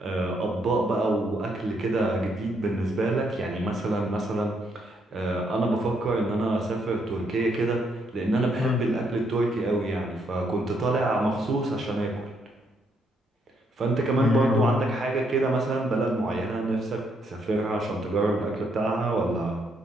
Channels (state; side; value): normal; both; correlation 0.74